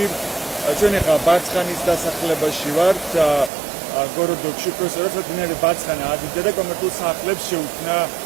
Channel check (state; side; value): drops out; left; at 3.5 s